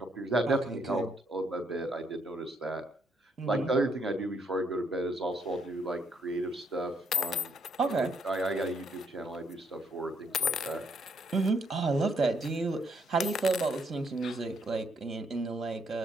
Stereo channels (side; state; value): both; normal; correlation 0.72